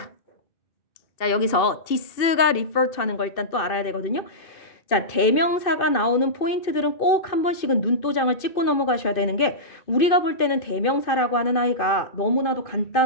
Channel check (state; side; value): late; right; 2.5 ms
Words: 자, 여기서 this가 refer to 하는 걸 일단 또 알아야 되거든요. 자, 대명사가 나오는 포인트들은 꼭 한 번씩은 눈도장을 찍고 넘어가셔야 되는 게 우리가 볼 때는 대명사라고 하는 아이가 너무나도